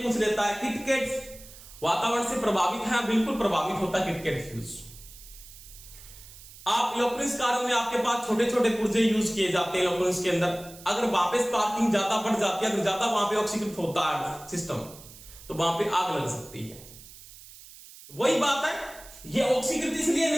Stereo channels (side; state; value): right; noise; hiss, 18 dB below the sound